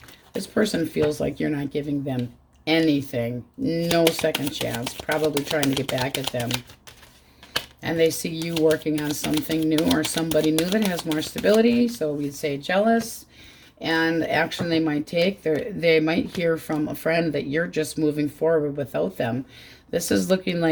This person feels like you're not giving them anything. No second chance. Probably trying to get back at them. And they see you working on something new or somebody new that has more stability. So we'd say jealous. And action they might take. They might hear from a friend that you're just moving forward without them. This is looking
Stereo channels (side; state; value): both; identical; correlation 1.00